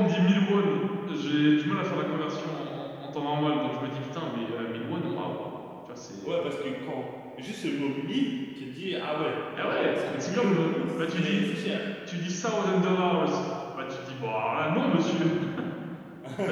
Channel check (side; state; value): both; identical; correlation 1.00